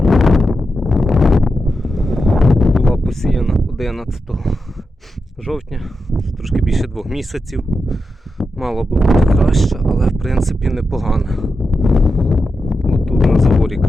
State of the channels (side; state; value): both; normal; correlation 0.88